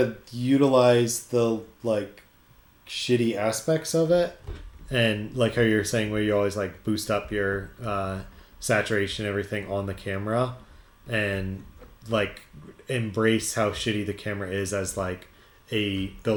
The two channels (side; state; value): both; identical; correlation 1.00